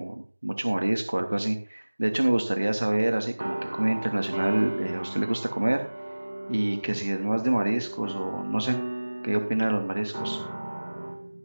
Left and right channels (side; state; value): both; inverted; correlation -1.00